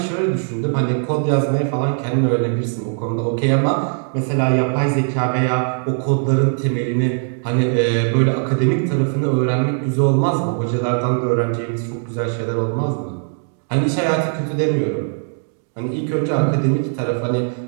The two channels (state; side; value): silent; left; 58 dB below the other